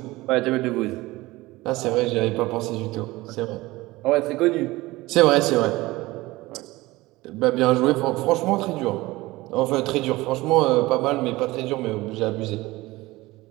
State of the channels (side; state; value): left; quieter; 19.8 dB